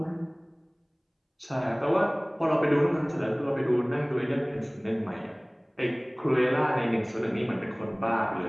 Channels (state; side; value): identical; both; correlation 1.00